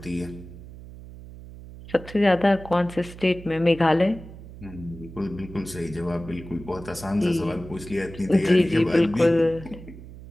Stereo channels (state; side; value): noise; right; hum, 16 dB below the sound